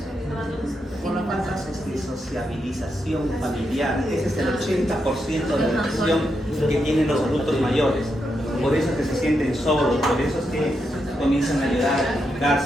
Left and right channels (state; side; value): normal; both; correlation 0.83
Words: Por la falta de sociabilización familiar. Ese es el 80% de la depresión que tienen los adultos mayores. Por eso es que se sienten solos, por eso es que comienzan a llorar, a